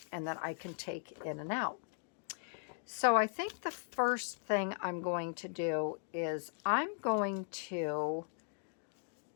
and that I can take in and out. So I think the first thing I'm going to do is I'm going to,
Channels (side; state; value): right; silent; digital silence